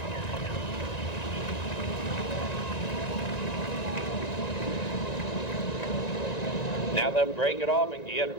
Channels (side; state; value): right; late; 1.9 ms